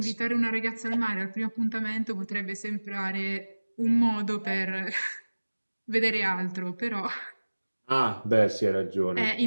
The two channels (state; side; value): inverted; both; correlation -1.00